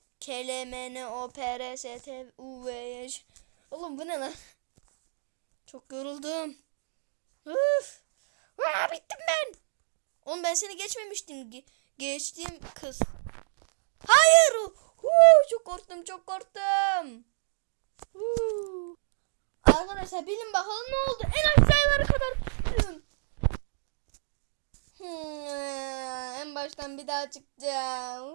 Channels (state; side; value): silent; left; digital silence